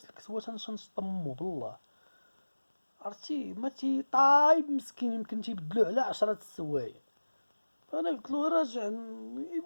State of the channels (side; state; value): both; inverted; correlation -1.00